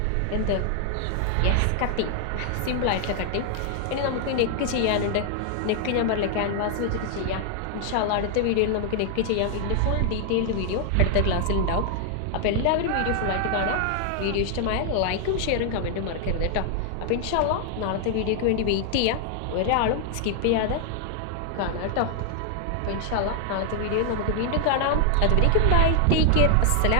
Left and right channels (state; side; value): different; both; correlation 0.00